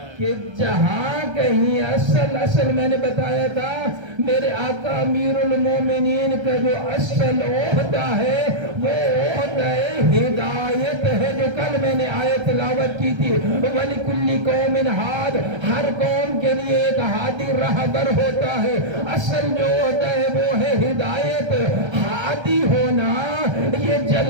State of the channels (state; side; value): late; left; 1.3 ms